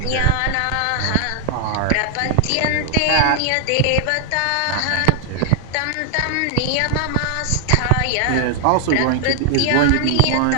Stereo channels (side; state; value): both; different; correlation 0.00